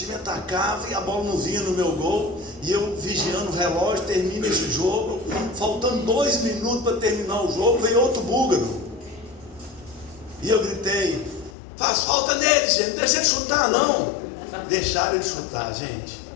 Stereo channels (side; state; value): right; drops out; at 11.6 s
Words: e a bola não vinha no meu gol. E eu vigiando o relógio, termina esse jogo. Faltando 2 minutos para terminar o jogo, veio outro búlgaro. E eu gritei: faz falta nele, gente, não deixa ele chutar não. Deixaram ele chutar, gente.